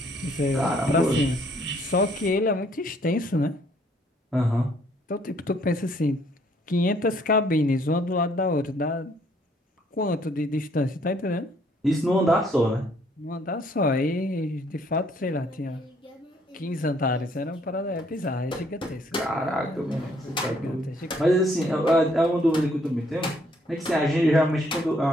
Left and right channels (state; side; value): normal; both; correlation 0.65